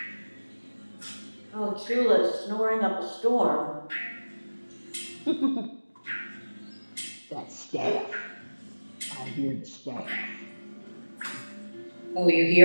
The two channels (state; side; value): inverted; both; correlation -1.00